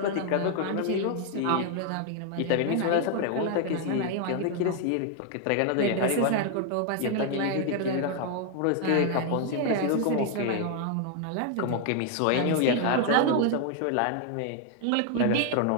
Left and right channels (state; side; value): different; both; correlation 0.00